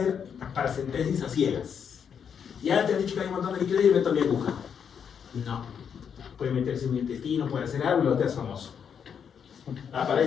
paracentesis a ciegas. Ya te han dicho que hay un montón de líquido y meto mi aguja. No. Puede meterse en un intestino, puede hacer algo y lo te haces famoso.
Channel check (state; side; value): quieter; right; 7.4 dB